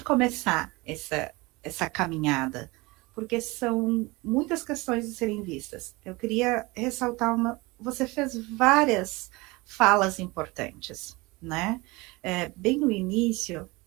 começar essa caminhada? Porque são muitas questões de serem vistas. Eu queria ressaltar você fez várias falas importantes, né? Bem no início,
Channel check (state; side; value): quieter; left; 23.6 dB